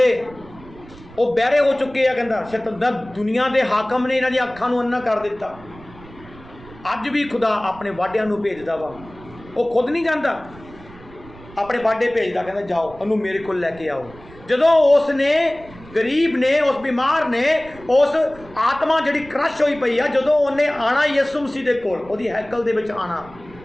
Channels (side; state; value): right; noise; rumble, 20 dB below the sound